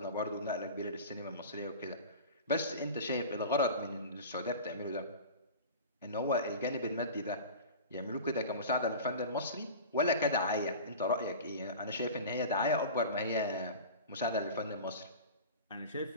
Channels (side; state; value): both; inverted; correlation -0.34